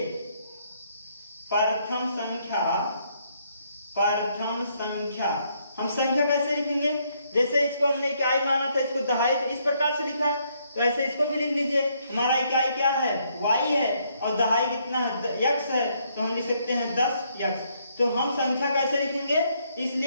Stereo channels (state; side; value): inverted; both; correlation -0.71